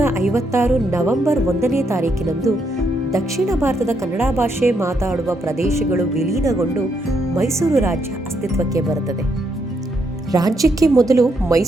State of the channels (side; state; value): both; normal; correlation 0.77